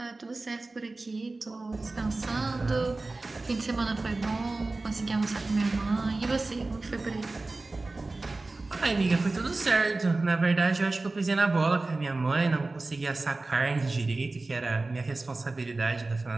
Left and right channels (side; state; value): left; quieter; 3.3 dB